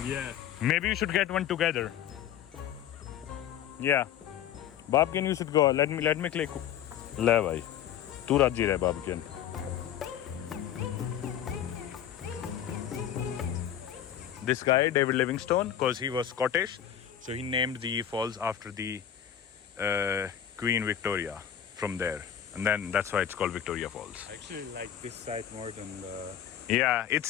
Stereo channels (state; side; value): quieter; right; 10.0 dB